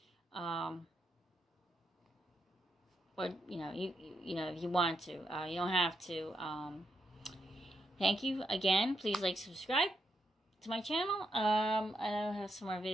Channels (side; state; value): both; normal; correlation 0.82